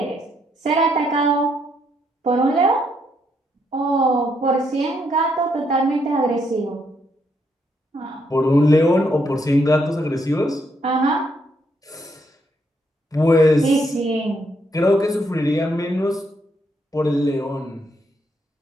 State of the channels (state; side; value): normal; both; correlation 0.75